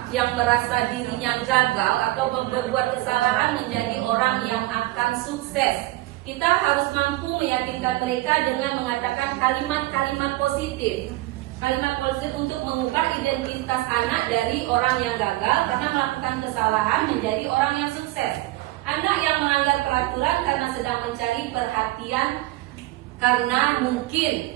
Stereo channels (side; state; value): left; quieter; 18.5 dB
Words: yang merasa dirinya gagal atau berbuat kesalahan menjadi orang yang akan sukses. Kita harus mampu meyakinkan mereka dengan mengatakan kalimat-kalimat positif. Kalimat positif untuk mengubah identitas anak dari orang yang gagal karena melakukan kesalahan menjadi orang yang sukses. Anak yang melanggar peraturan karena sedang mencari perhatian karena